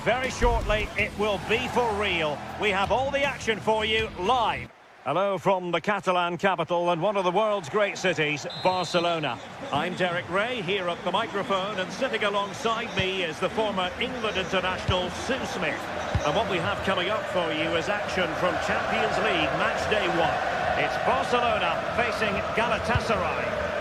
shortly it will be for real. We have all the action for you live. Hello from the Catalan capital and one of the world's great cities, Barcelona. I'm Derek Ray here at the microphone, and sitting alongside me is the former England international Sue Smith. And what we have coming up for you is action from Champions League match day 1. It's Barcelona facing Galatasaray.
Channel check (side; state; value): both; identical; correlation 1.00